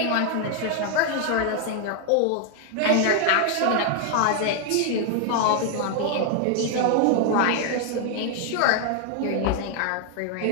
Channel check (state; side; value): different; both; correlation 0.00